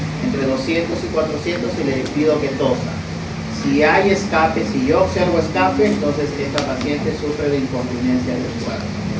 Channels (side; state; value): both; identical; correlation 1.00